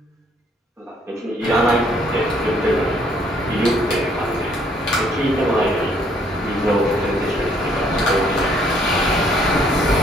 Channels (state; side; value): normal; both; correlation 0.65